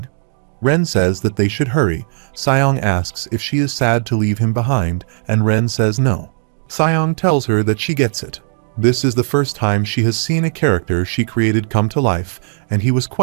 Ren says that they should hurry. Seong asks if she is sad to leave him behind, and Ren says no. Seong tells her that she gets it. This is the first time she has seen a character she created come to life, and he was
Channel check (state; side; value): silent; left; 68 dB below the other